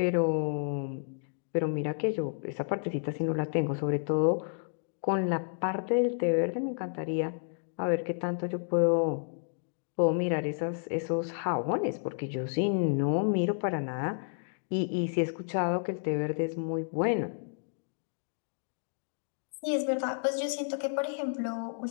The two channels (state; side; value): silent; right; digital silence